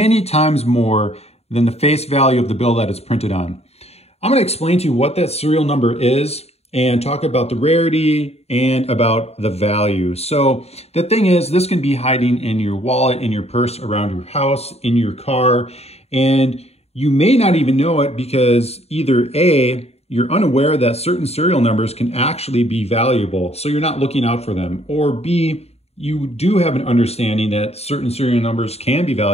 times more than the face value of the bill that it's printed on. I'm going to explain to you what that serial number is and talk about the rarity and about the value. So the thing is, this can be hiding in your wallet, in your purse, around your house, in your car, and you may not even know it because either A, you're unaware that certain serial numbers can actually be valuable, so you're not looking out for them. Or B, you do have an understanding that certain serial numbers can be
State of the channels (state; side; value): late; right; 0.30 ms